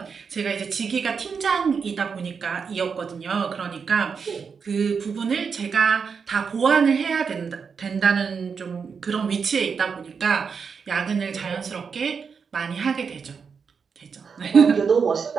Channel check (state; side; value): quieter; left; 5.9 dB